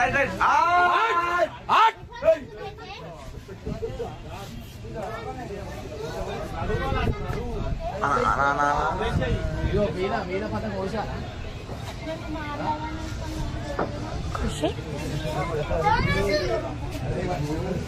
రైట్. ఇగో మీద మీద పతంగ కోసా.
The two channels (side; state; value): both; identical; correlation 1.00